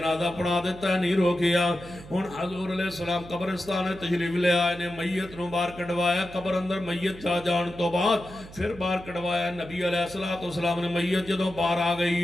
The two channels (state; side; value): noise; right; hum, 17 dB below the sound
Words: پڑھا دیتا ہے، نہیں روکیا۔ ہن حضور علیہ السلام قبرستان تشریف لے آئے نے، میت نو باہر کڈوایا۔ قبر اندر میت جا جان تو بعد پھر باہر کڈوایا۔ نبی علیہ السلام نے میت جدوں باہر آ